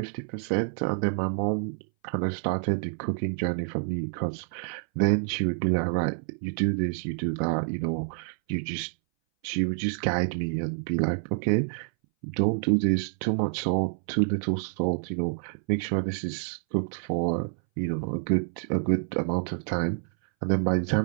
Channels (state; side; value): silent; left; 59 dB below the other